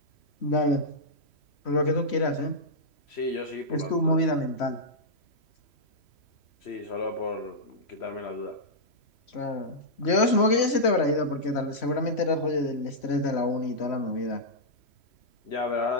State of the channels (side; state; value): right; late; 3.1 ms